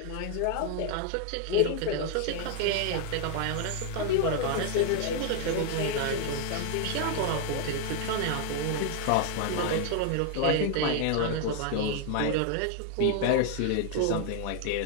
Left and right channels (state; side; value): different; both; correlation 0.00